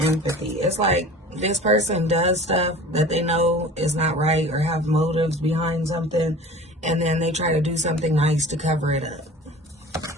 empathy. It's like this person does stuff that they know is not right or have motives behind something, and then they try to do something nice to cover it up.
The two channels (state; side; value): normal; both; correlation 0.41